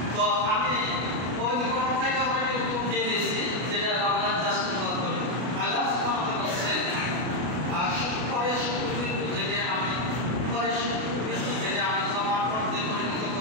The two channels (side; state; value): left; late; 32 ms